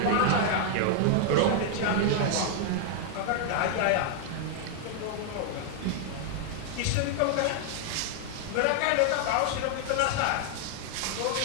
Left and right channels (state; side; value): different; both; correlation 0.00